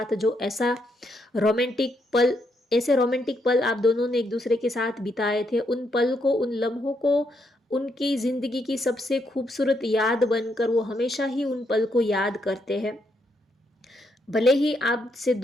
जो रोमांटिक पल ऐसे रोमांटिक पल आप दोनों ने एक दूसरे के साथ बिताए थे, उन पल को, उन लम्हों को, उनकी ज़िंदगी की सबसे खूबसूरत याद बनकर वो हमेशा ही उन पल को याद करते हैं। भले ही आपसे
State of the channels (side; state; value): both; normal; correlation 0.77